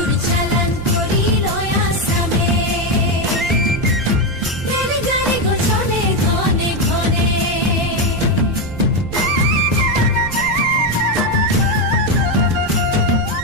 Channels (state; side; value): noise; right; rumble, 10 dB below the sound